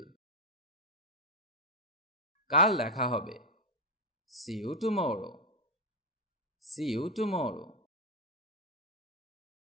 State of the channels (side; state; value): both; normal; correlation 0.05